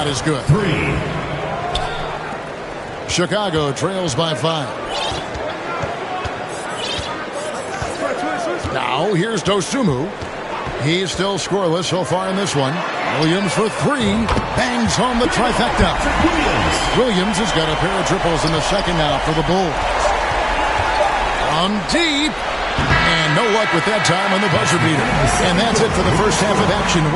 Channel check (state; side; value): identical; both; correlation 1.00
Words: is good. 3. Chicago trails by 5. Now here's Dosunmu. He's still scoreless so far in this one. Williams for 3. Bangs home the trifecta. Williams has got a pair of triples in the second now for the Bulls. From deep. And no luck with that time on the buzzer beater. And that's it for the first half of action.